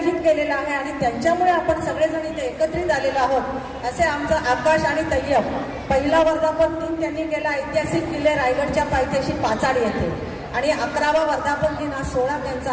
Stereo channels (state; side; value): identical; both; correlation 1.00